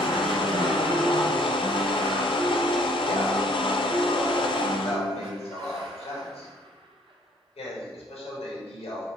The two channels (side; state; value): both; normal; correlation 0.60